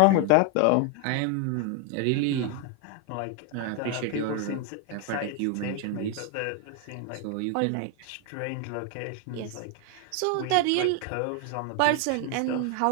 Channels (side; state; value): both; different; correlation 0.01